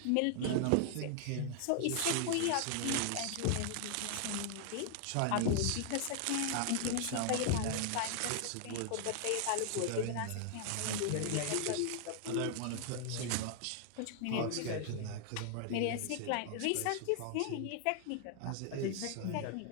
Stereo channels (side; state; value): both; different; correlation 0.00